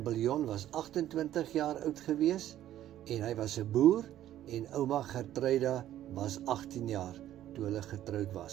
Biljon was 28 jaar oud gewees, en hy was 'n boer, en ouma Gertruida was 18 jaar toe hulle getroud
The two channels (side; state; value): left; quieter; 12.5 dB